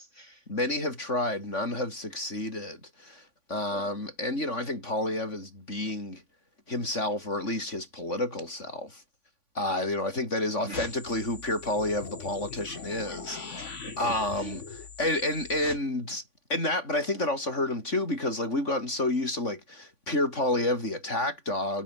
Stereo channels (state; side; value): late; right; 3.5 ms